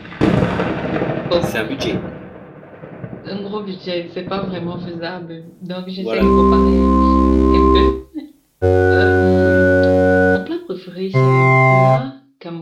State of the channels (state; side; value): identical; both; correlation 1.00